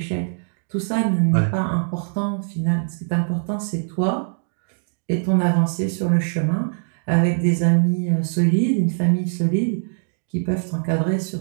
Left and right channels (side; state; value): left; silent; digital silence